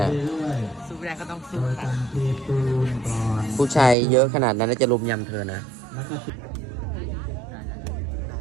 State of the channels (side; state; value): left; drops out; at 4.0 s